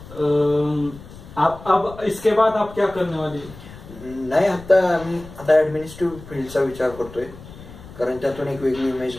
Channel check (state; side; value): noise; left; rumble, 17 dB below the sound